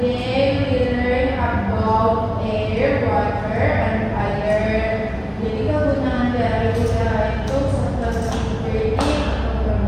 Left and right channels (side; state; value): both; identical; correlation 1.00